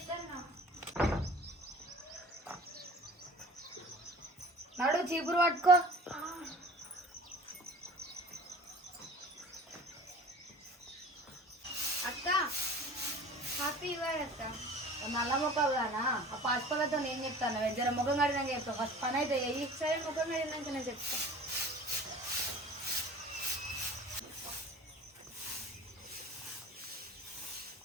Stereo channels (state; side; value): normal; both; correlation 0.43